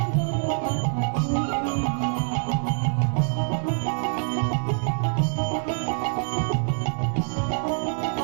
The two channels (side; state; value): left; silent; 59 dB below the other